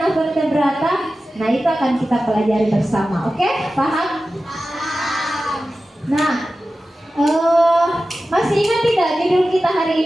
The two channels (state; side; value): normal; both; correlation 0.94